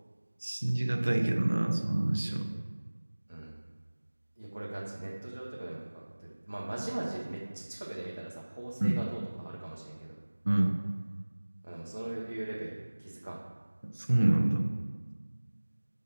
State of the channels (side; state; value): both; inverted; correlation -1.00